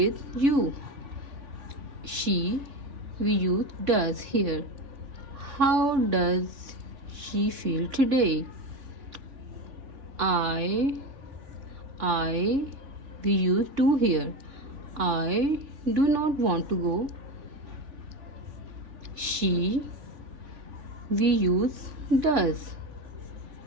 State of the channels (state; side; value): late; left; 3.6 ms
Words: you. She, we use does here. How does she feel today? I, we use do here. I do not want to go. She, we use does.